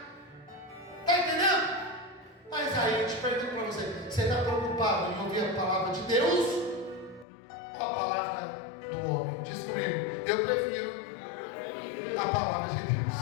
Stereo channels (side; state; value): right; drops out; at 7.2 s